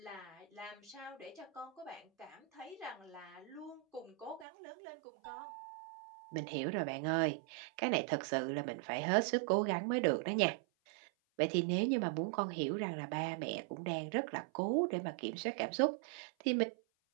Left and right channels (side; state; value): left; drops out; at 4.5 s